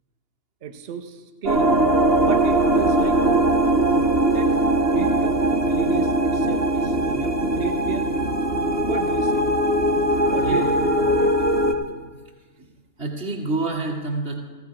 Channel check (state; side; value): late; right; 2.8 ms